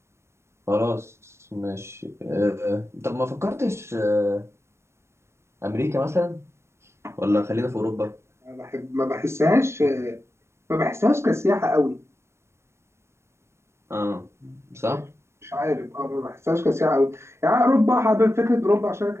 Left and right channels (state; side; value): late; left; 0.13 ms